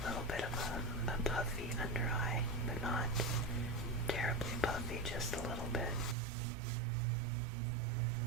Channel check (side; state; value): left; drops out; at 6.2 s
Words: a little bit of a puffy under eye, but not terribly puffy, just a little bit.